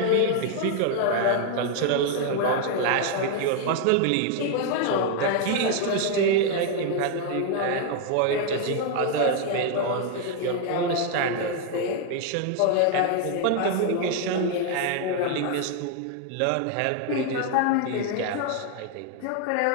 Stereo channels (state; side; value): different; both; correlation 0.00